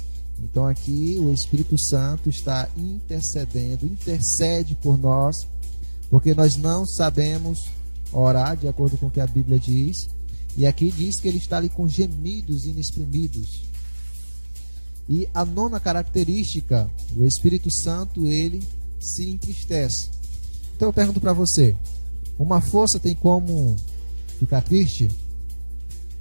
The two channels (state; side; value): inverted; both; correlation -1.00